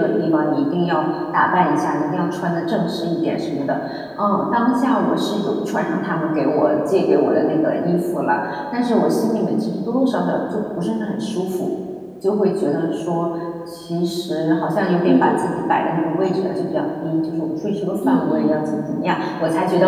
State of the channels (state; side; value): identical; both; correlation 1.00